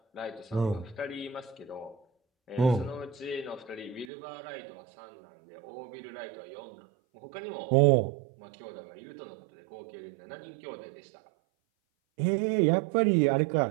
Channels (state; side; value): drops out; left; at 4.1 s